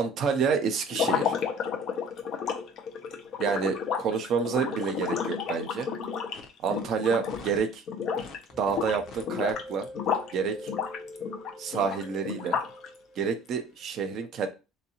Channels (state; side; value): normal; both; correlation 0.47